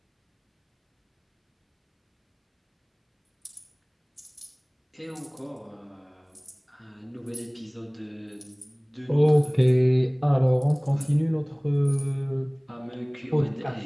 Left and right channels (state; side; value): identical; both; correlation 1.00